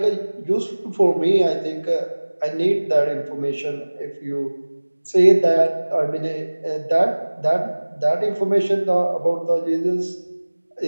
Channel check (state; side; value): inverted; both; correlation -1.00